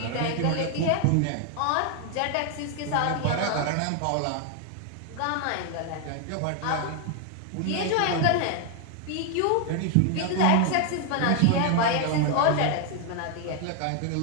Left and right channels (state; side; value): different; both; correlation 0.00